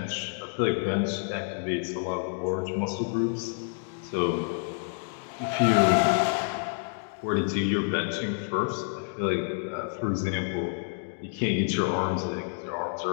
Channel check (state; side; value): silent; right; 58 dB below the other